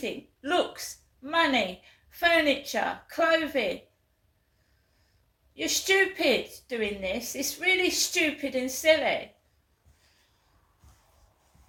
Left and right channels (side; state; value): both; identical; correlation 1.00